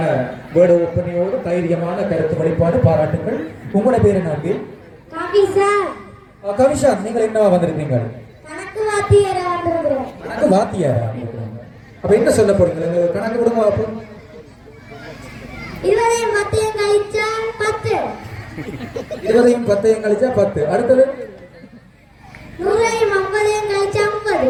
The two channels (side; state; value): both; identical; correlation 1.00